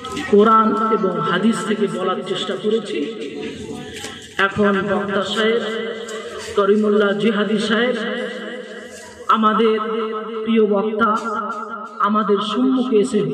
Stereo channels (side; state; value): both; identical; correlation 1.00